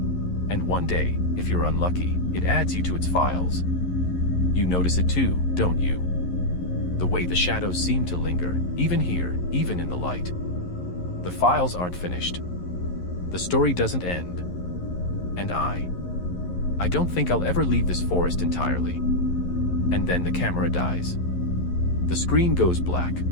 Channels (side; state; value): right; late; 11 ms